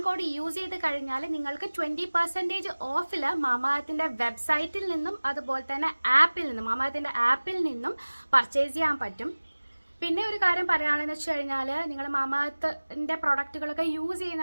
കോഡ് യൂസ് ചെയ്ത് കഴിഞ്ഞാൽ നിങ്ങൾക്ക് 20% ഓഫിൽ മാമാഅർത്തിൻ്റെ വെബ്സൈറ്റിൽ നിന്നും അതുപോലെ തന്നെ മാമാഅർത്തിൻ്റെ ആപ്പിൽ നിന്നും പർച്ചേസ് ചെയ്യാൻ പറ്റും. പിന്നെ ഒരു കാര്യം പറയുകയാണെന്ന് വെച്ച് കഴിഞ്ഞാൽ, നിങ്ങൾ മാമാഅർത്തിൻ്റെ പ്രൊഡക്റ്റുകളൊക്കെ യൂസ്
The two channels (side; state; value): both; inverted; correlation -1.00